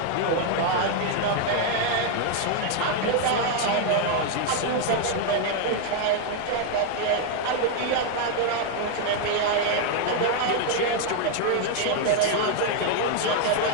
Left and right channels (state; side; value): different; both; correlation 0.00